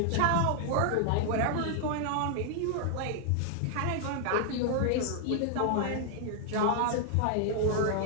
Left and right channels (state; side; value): different; both; correlation 0.00